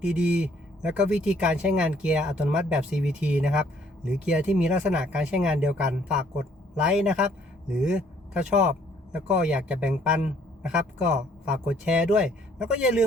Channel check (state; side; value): normal; both; correlation 0.63